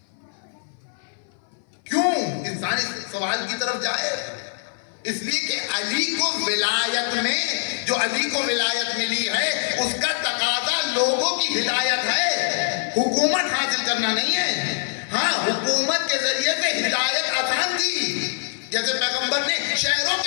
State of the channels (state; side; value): silent; right; 58 dB below the other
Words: کیوں؟ انسان اس سوال کی طرف جائے. اس لیے کہ علی کو ولایت میں, جو علی کو ولایت ملی ہے اس کا تقاضا لوگوں کی ہدایت ہے, حکومت حاصل کرنا نہیں ہے. ہاں حکومت کے ذریعے سے ہدایت آسان تھی, جیسے پیغمبر نے شہروں